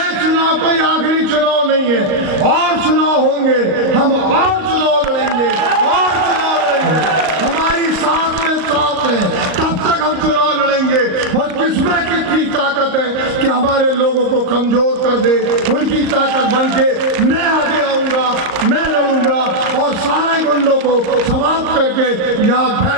चुनाव कोई आखिरी चुनाव नहीं है, और चुनाव होंगे, हम और चुनाव लड़ेंगे, और चुनाव लड़ेंगे। हमारी सांस में सांस है, तब तक हम चुनाव लड़ेंगे। और किसमें कितनी ताकत है कि हमारे लोगों को कमजोर कर दे, उनकी ताकत बन के मैं आगे आऊंगा, मैं लड़ूंगा, और सारे गुंडों को समाप्त करके यहाँ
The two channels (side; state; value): left; late; 38 ms